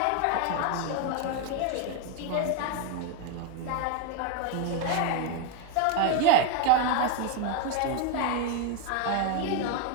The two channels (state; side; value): different; both; correlation 0.01